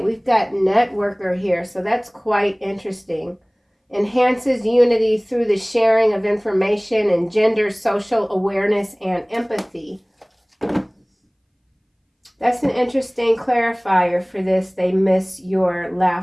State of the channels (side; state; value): both; identical; correlation 1.00